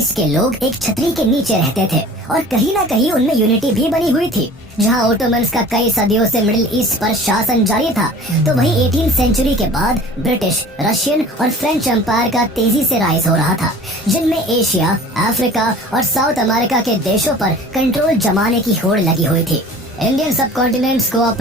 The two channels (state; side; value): normal; both; correlation 0.44